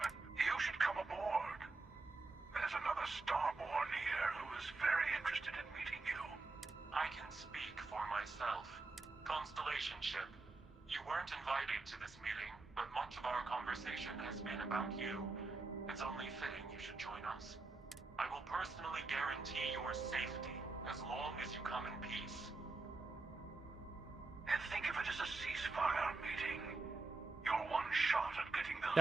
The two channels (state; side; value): quieter; left; 3.5 dB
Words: You should come aboard. There's another Starborn here who is very interested in meeting you. I can speak for myself. Constellation ship, you weren't invited to this meeting, but much of our conversation has been about you. It's only fitting you should join us. I will personally guarantee your safety as long as you come in peace. And think of it as a ceasefire meeting. You're one shot at getting those